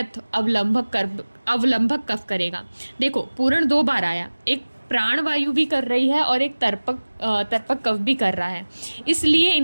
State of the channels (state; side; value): inverted; both; correlation -1.00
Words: अवलंबक कफ करेगा। देखो, पूर्ण 2 बार आया, एक प्राणवायु भी कर रही है और एक तर्पक कफ भी कर रहा है, इसलिए